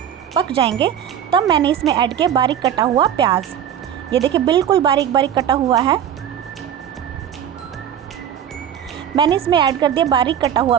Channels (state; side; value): quieter; left; 9.5 dB